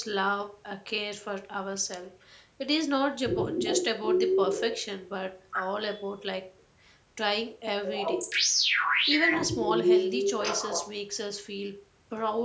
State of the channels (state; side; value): identical; both; correlation 1.00